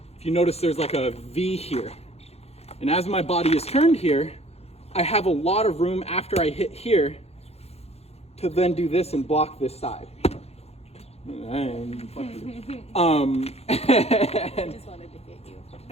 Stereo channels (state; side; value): late; right; 0.30 ms